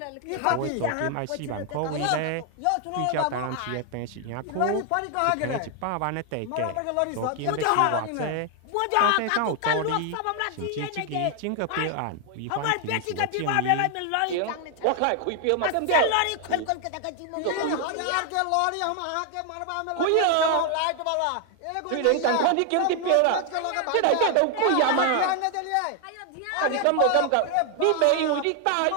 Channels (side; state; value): both; different; correlation 0.00